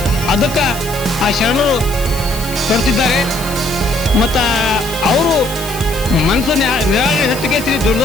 ಅದಕ್ಕೆ ಆ ಶರಣರು ಕೊಡ್ತಿದ್ದಾರೆ. ಮತ್ತು ಅವರು ಮನಸ್ಸು ನಿರಾಳೆ ಹೆಚ್ಚಿಗೆ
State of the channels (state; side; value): noise; left; hiss, 13 dB below the sound